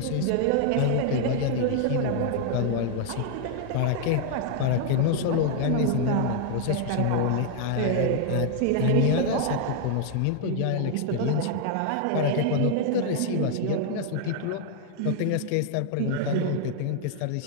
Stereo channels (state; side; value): different; both; correlation 0.00